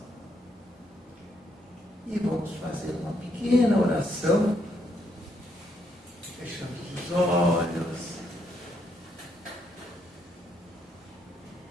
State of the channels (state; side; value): normal; both; correlation 0.75